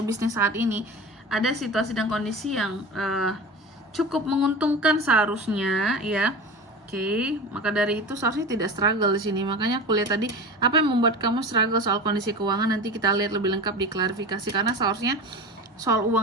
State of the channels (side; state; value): both; normal; correlation 0.30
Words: bisnis saat ini, ada situasi dan kondisi yang cukup menguntungkan seharusnya ya. Oke, maka dari itu seharusnya tidak struggle di sini. Makanya aku lihat tadi apa yang membuat kamu struggle soal kondisi keuangan, nanti kita lihat lebih lengkap di klarifikasi, karena seharusnya soal